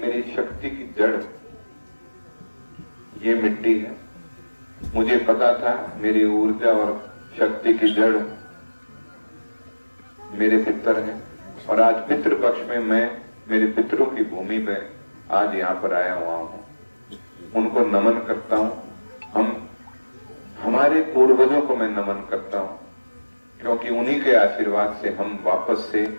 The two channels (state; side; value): inverted; both; correlation -1.00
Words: शक्ति की जड़ ये मिट्टी है। मुझे पता था मेरी ऊर्जा और शक्ति की जड़ मेरे पितर हैं और आज पितृपक्ष में मैं मेरे पितरों की भूमि पे आज यहाँ पर आया हुआ हूँ, उनको नमन करता हूँ। हमारे पूर्वजों को मैं नमन करता हूँ, क्योंकि उन्हीं के आशीर्वाद से हम वापस से